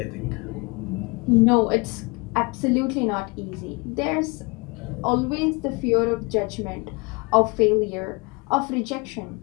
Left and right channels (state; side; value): quieter; right; 28.9 dB